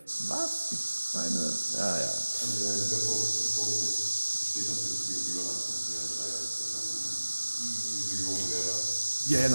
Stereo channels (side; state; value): both; inverted; correlation -1.00